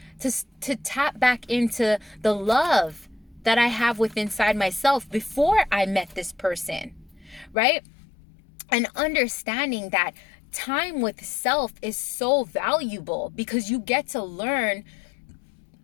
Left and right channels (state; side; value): drops out; right; at 7.6 s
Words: to tap back into the love that I have within inside myself before I met this person, right? And understanding that time with self is so valuable, because you get to learn